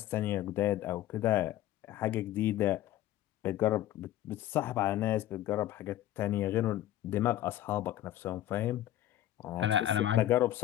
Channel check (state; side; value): quieter; right; 13.3 dB